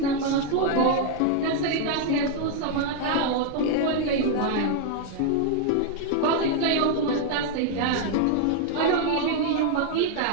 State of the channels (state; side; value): different; both; correlation 0.00